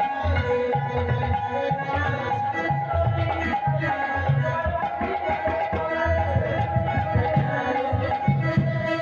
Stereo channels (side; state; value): both; identical; correlation 1.00